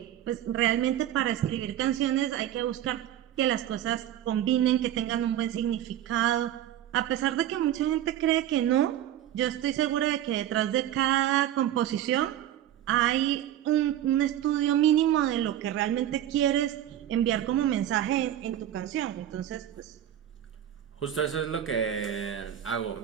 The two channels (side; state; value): left; quieter; 11.6 dB